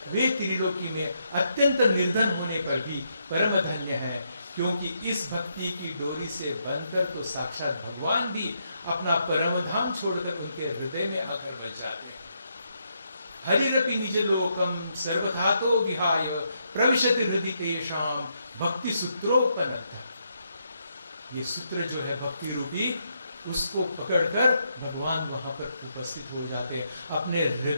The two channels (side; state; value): both; inverted; correlation -0.78